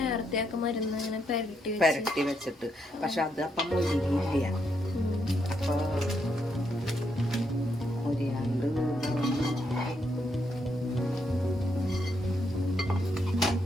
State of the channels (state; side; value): normal; both; correlation 0.78